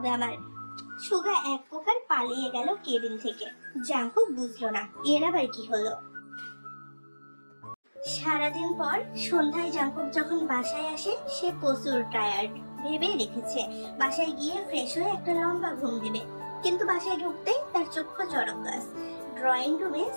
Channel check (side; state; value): both; inverted; correlation -1.00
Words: আমার। সুগা এক প্রকার পালিয়ে গেল কেবিন থেকে। জাংকুক বুঝলো না এর আবার কি হলো। সারাদিন পর সন্ধ্যায় জাংকুক যখন বাসায় আসে, সে প্রচুর টায়ার্ড। ভেবে রেখেছে বাসায় গিয়ে ফ্রেশ হয়ে একটা লম্বা ঘুম দিবে, কিন্তু বাসায় ঢুকতেই তার চক্ষু জড়গাছ। ড্রয়িং রুমে